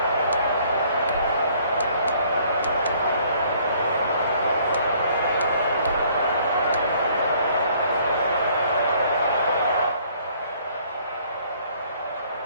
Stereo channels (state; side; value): inverted; both; correlation -0.61